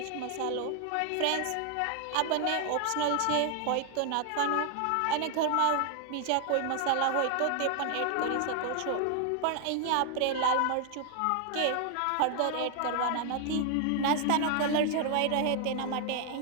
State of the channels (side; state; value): both; different; correlation 0.00